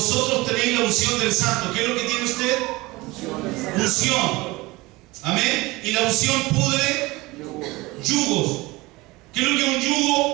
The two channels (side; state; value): left; quieter; 21.6 dB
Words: tenéis la unción del Santo. ¿Qué es lo que tiene usted? Unción. Amén. Y la unción pudre yugos. ¿Qué es lo que es un